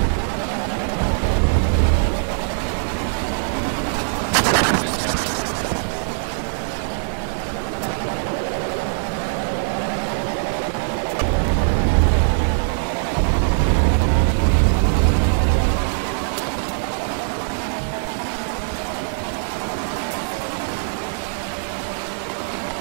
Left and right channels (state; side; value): silent; left; 63 dB below the other